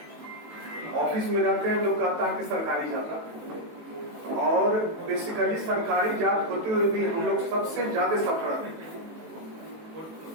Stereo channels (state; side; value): late; left; 18 ms